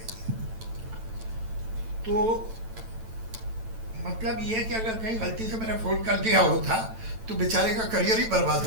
दिया। तो मतलब ये है कि अगर कहीं गलती से मैंने फ़ोन कर दिया होता तो बेचारे का करियर ही बर्बाद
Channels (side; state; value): left; late; 9.0 ms